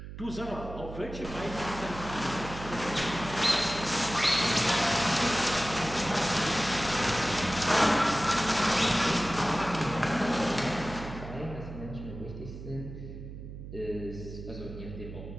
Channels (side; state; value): right; noise; hum, 11 dB below the sound